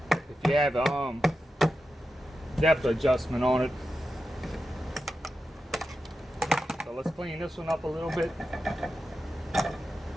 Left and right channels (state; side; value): normal; both; correlation 0.91